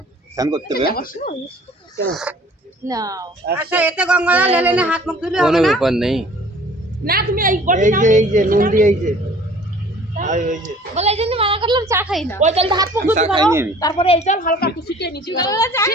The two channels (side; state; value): both; normal; correlation 0.51